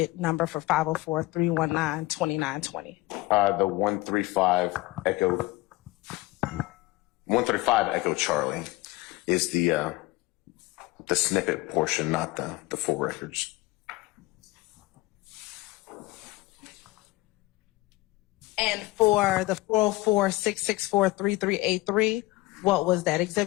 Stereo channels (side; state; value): right; quieter; 19.6 dB